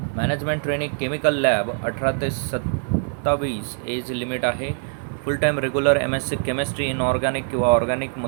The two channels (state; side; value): silent; left; digital silence